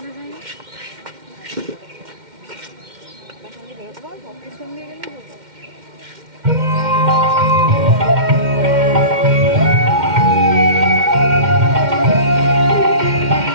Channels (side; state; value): left; late; 2.1 ms